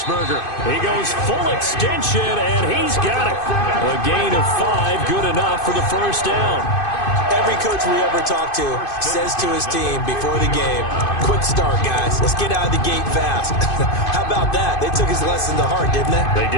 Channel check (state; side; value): late; right; 2.5 ms